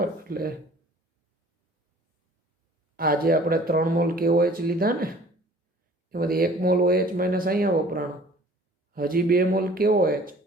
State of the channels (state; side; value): normal; both; correlation 0.50